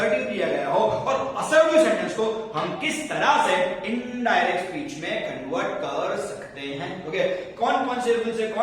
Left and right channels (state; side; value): identical; both; correlation 1.00